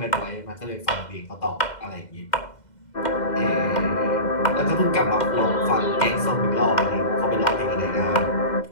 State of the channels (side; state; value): right; late; 2.1 ms